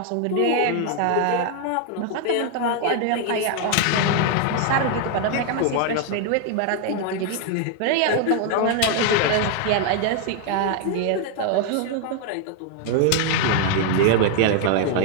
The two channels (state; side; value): different; both; correlation 0.00